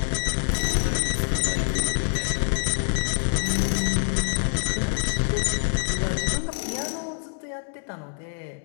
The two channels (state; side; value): silent; right; 61 dB below the other